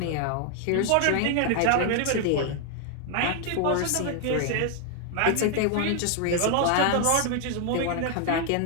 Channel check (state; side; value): different; both; correlation 0.00